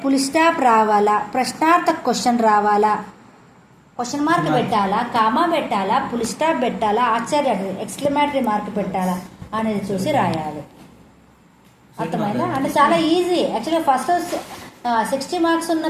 ఫుల్ స్టాప్ రావాలా, ప్రశ్నార్థక క్వశ్చన్ రావాలా, క్వశ్చన్ మార్క్ పెట్టాలా, కామా పెట్టాలా, ఫుల్ స్టాప్ పెట్టాలా, ఆశ్చర్య ఎక్స్క్లమేటరీ మార్క్ పెట్టాలా అనేది చూసి రాయాలి. అర్థమైందా? అంటే చాలా ఈజీ. యాక్చువల్గా ఫస్ట్ 60 మార్క్స్ ఉన్న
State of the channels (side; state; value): both; identical; correlation 1.00